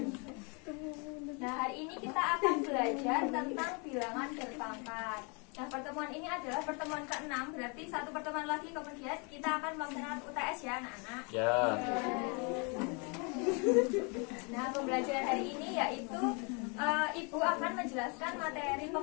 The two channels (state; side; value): quieter; right; 33.5 dB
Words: Nah, hari ini kita akan belajar tentang bilangan berpangkat. Nah, pertemuan ini adalah pertemuan ke-6, berarti satu pertemuan lagi kemudian kita akan melaksanakan UTS ya, anak-anak. Ya. Nah, pembelajaran hari ini yaitu Ibu akan menjelaskan materi